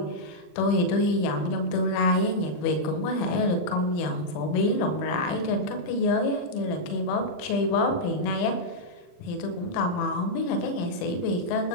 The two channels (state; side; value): late; right; 39 ms